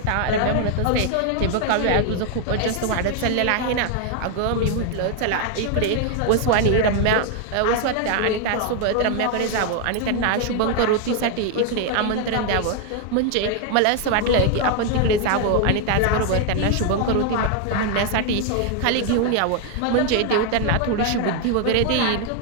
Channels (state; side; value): different; both; correlation 0.00